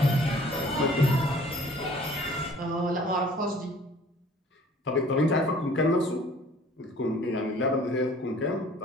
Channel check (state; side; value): normal; both; correlation 0.52